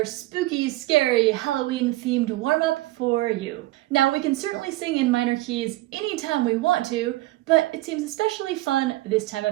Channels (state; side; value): quieter; left; 18.0 dB